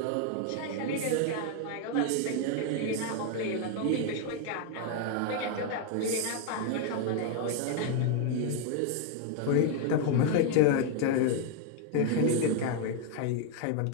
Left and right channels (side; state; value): both; different; correlation 0.00